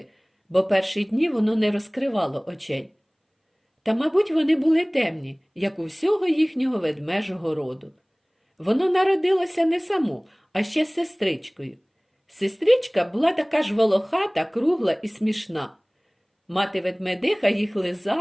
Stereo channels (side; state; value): both; identical; correlation 1.00